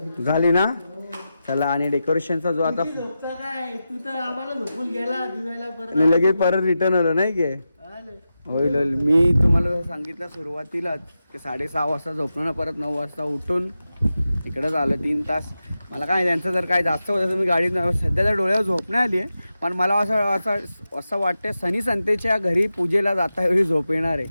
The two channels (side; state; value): both; inverted; correlation -0.91